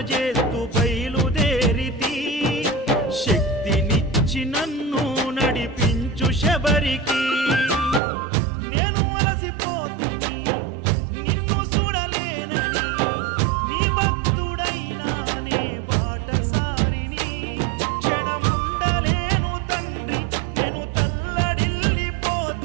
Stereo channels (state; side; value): drops out; left; at 8.0 s